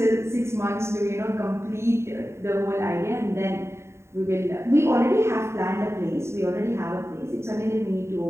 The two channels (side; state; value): left; late; 0.13 ms